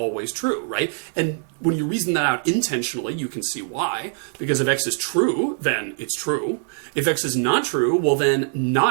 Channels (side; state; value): left; silent; 64 dB below the other